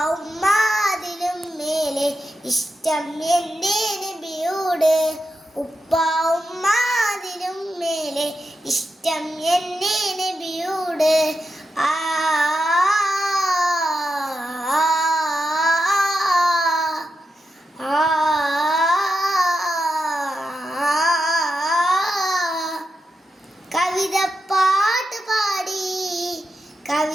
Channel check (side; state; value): both; normal; correlation 0.88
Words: ഉമ്മാതിലും മേലെ ഇഷ്ടം എൻ്റെ നബിയോട്. ഉപ്പ ഉമ്മാതിലും മേലെ ഇഷ്ടം എൻ്റെ നബിയോട്. ആ കവിത പാട്ട് പാടി